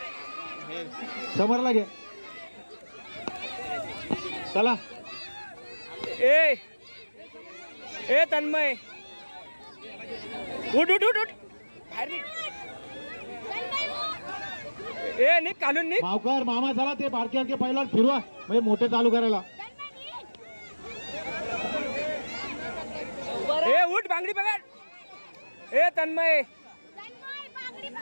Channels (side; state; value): both; inverted; correlation -1.00